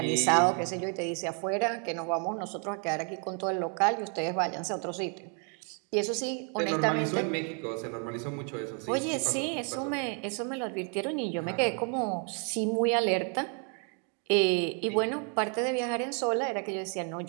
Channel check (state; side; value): quieter; left; 39.6 dB